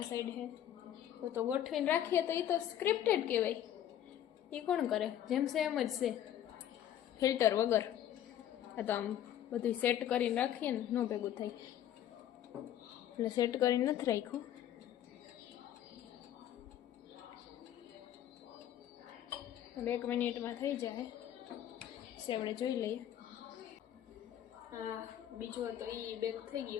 સાઈડ હે તો ગોઠવીને રાખીએ તો એ તો સ્ક્રિપ્ટેડ કહેવાય. એ કોણ કરે? જેમ છે એમ જ છે, ફિલ્ટર વગર. આ તો આમ બધું સેટ કરીને રાખીએ ને ન ભેગું થાય એટલે સેટ કરીને નથી રાખ્યું. હવે 1 મિનિટમાં થઈ જાય છે, આપણે જોઈ લઈએ. હા બીજો હતો એ બેક થઈ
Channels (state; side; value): quieter; right; 11.1 dB